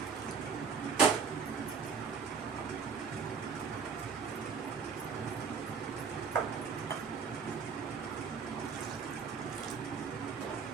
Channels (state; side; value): quieter; left; 5.7 dB